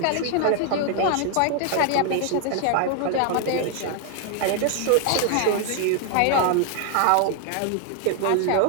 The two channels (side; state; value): both; different; correlation 0.00